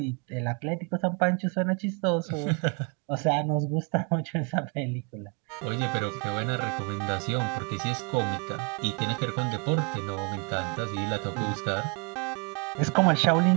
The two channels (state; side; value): quieter; left; 34.9 dB